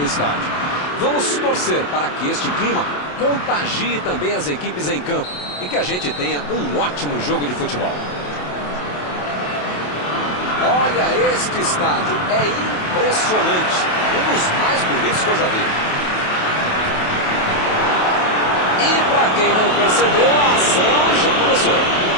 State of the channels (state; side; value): late; right; 28 ms